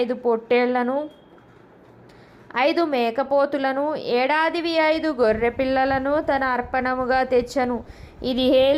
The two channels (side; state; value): both; identical; correlation 1.00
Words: పొట్టేళ్లను 5 మేకపోతులను 5 గొర్రె పిల్లలను తన అర్పణముగా తెచ్చెను. ఇది